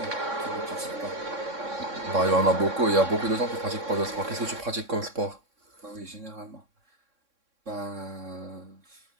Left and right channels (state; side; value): late; left; 3.6 ms